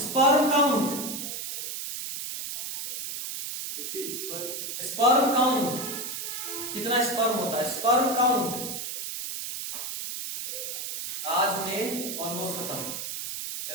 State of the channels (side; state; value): right; noise; hiss, 5 dB below the sound